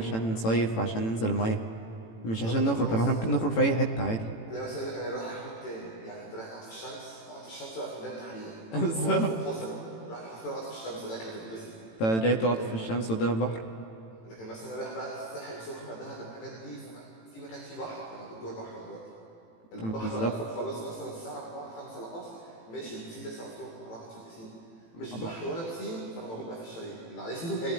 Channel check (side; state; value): right; late; 18 ms